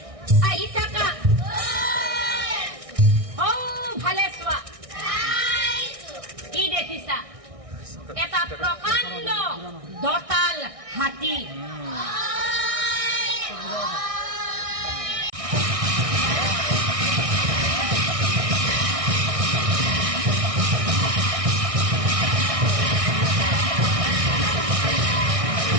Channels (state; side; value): late; left; 1.6 ms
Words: ও ভালে চোৱা কি দেখিছা এটা প্ৰকাণ্ড দতাল হাতী